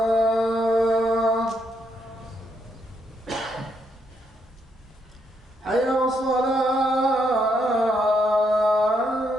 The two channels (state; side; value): normal; both; correlation 0.76